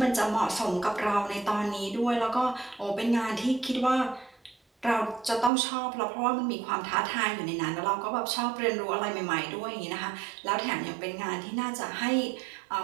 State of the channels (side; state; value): left; drops out; at 5.5 s